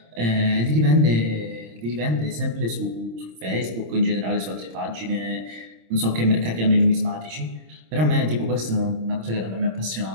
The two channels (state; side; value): late; left; 26 ms